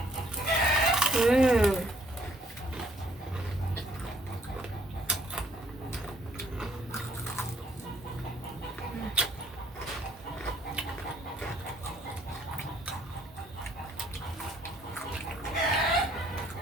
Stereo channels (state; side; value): normal; both; correlation 0.65